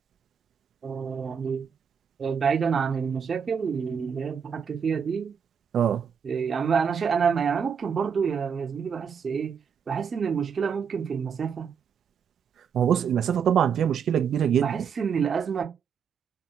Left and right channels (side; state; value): left; quieter; 7.0 dB